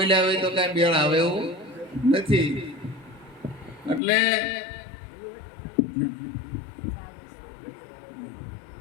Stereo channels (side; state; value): right; drops out; at 4.0 s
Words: હોય તો કઈ મેળ આવે એવું નથી. એટલે